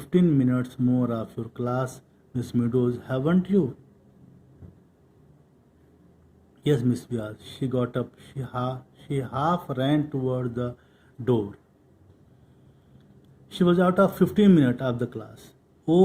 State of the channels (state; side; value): identical; both; correlation 1.00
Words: minutes more of your class, Miss Meadows, haven't you? Yes, Miss Wyatt. She got up. She half ran toward the door. She was out of 15 minutes of the class.